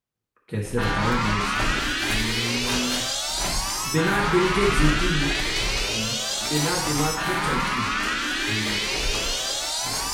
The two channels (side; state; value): both; identical; correlation 1.00